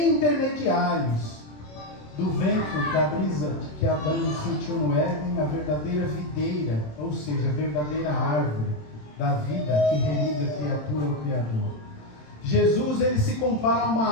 intermediários, do vento, da brisa que Adão sentiu no Éden, a verdadeira videira, ou seja, a verdadeira árvore da vida que religa a criatura ao Criador. Jesus, ele se compara a uma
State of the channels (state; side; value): late; right; 27 ms